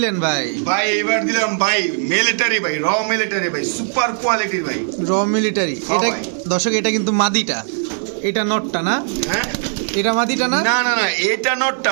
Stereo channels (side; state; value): left; silent; digital silence